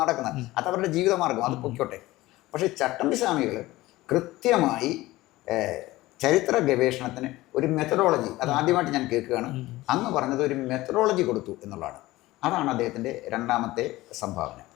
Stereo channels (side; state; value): right; quieter; 18.2 dB